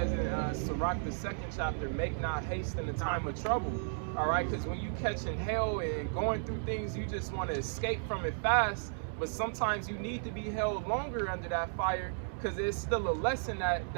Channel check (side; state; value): left; silent; digital silence